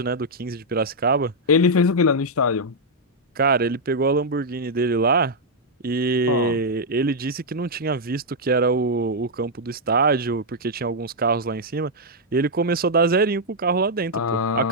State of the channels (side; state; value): both; normal; correlation -0.04